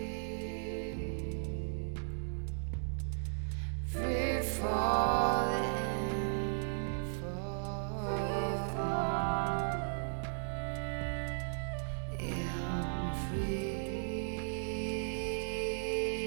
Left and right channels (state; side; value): silent; left; digital silence